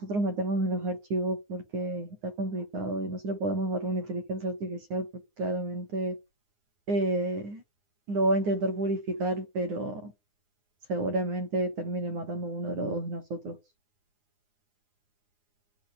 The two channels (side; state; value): left; late; 9.7 ms